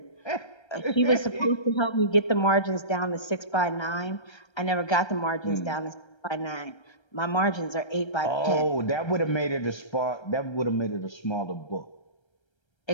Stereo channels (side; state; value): right; late; 1.3 ms